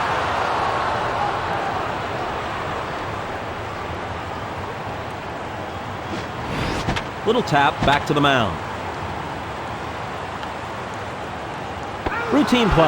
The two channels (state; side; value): identical; both; correlation 1.00